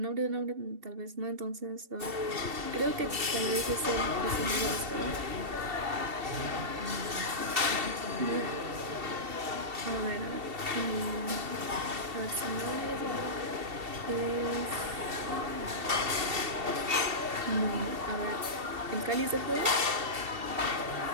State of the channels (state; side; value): late; left; 2.7 ms